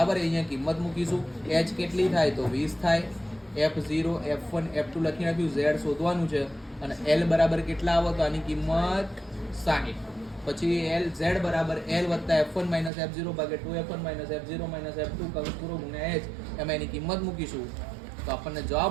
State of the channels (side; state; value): left; drops out; at 12.9 s